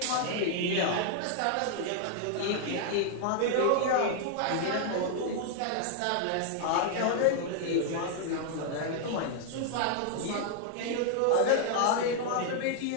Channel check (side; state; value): both; different; correlation 0.00